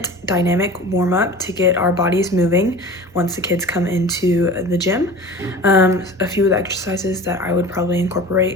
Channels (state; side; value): normal; both; correlation 0.37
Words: dynamic warm-up to get our bodies moving once the kids come into the gym. A few of the exercises that I would probably